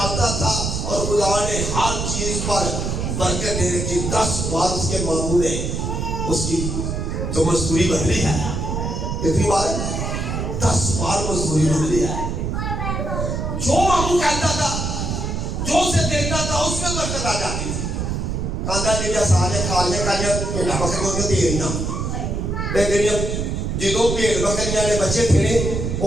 था, और खुदा ने हर चीज पर बरकत दे रखी। 10 बार उसके मामू ने उसकी जो मजदूरी बदली है, कितनी बार? 10 बार मजदूरी बदली है। जो मामू कहता था, जो उसे देता था, उसमें बरकत आ जाती थी। कांदा लिया साले काले काले भेड़ा बकरियों में तेरियां बेगरियां, जिदों भेड़ बकरियां ने बच्चे थे वो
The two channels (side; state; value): right; noise; rumble, 2 dB below the sound